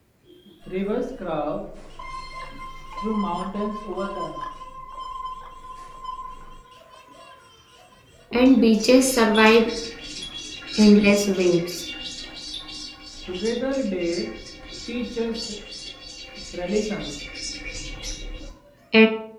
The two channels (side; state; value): both; identical; correlation 1.00